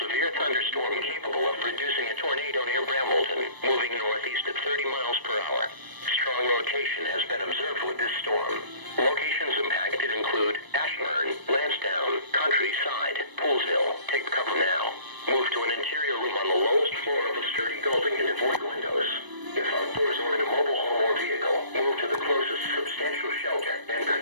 thunderstorm capable of producing a tornado near Brambleton, moving northeast at 30 miles per hour. Strong rotation has been observed with this storm. Locations impacted include Ashburn, Lansdowne, Countryside, Poolsville. Take cover now. Move to an interior room on the lowest floor of a sturdy building and avoid windows. If outdoors or in a mobile home or vehicle, move to the closest substantial shelter and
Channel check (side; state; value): left; late; 1.0 ms